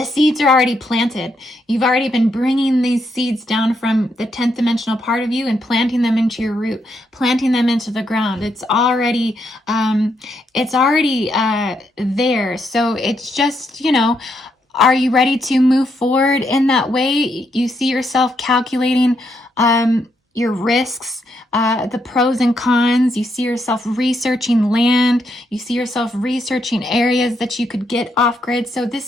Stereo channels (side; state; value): both; normal; correlation 0.78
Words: seeds are already planted. You've already been bringing these seeds down from the 10th dimensional part of you and planting them into your root, planting them into the ground. It's already there. So it's just, are you ready to move forward in that way? You see yourself calculating your risks, the pros and cons. You see yourself researching land. You see yourself researching areas that you could get off grid. So